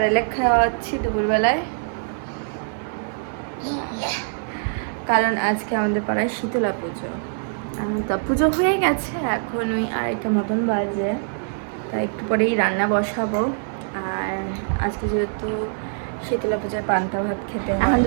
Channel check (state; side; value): silent; left; digital silence